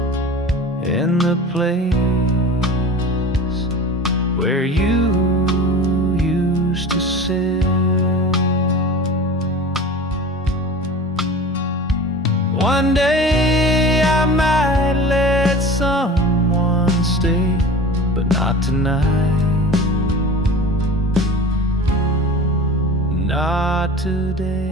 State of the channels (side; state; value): both; normal; correlation 0.36